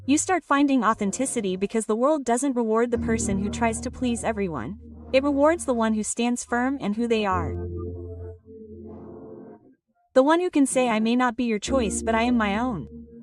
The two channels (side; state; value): both; identical; correlation 1.00